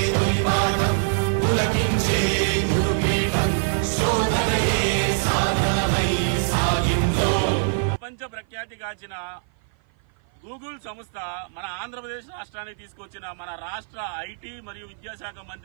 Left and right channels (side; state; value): left; silent; 55 dB below the other